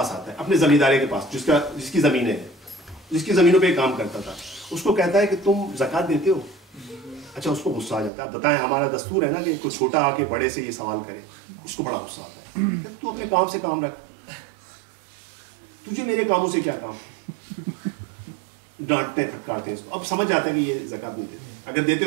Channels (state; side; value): drops out; left; at 8.1 s